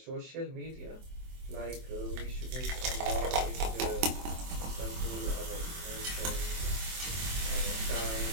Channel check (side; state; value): left; late; 24 ms